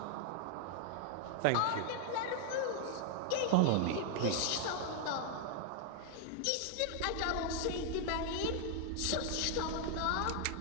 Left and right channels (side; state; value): both; different; correlation 0.00